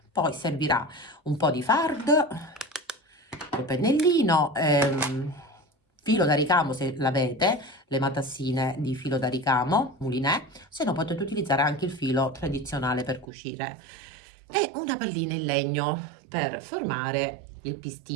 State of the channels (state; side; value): drops out; left; at 13.2 s